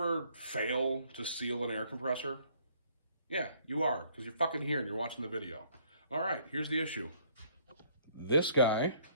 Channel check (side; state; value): both; inverted; correlation -0.63